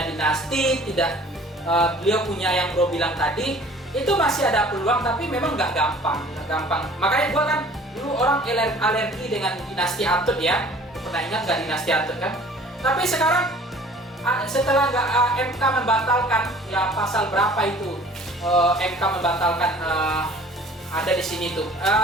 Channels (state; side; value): normal; both; correlation 0.49